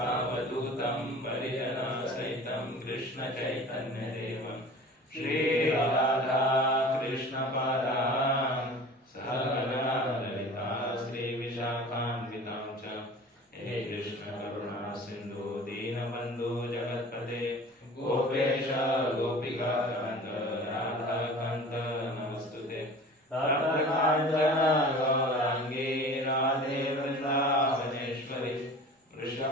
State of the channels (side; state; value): both; normal; correlation 0.41